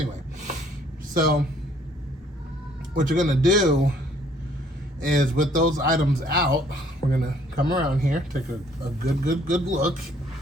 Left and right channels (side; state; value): both; normal; correlation 0.62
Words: So what you're gonna do is, with those items out, we're gonna come around here, take a good look.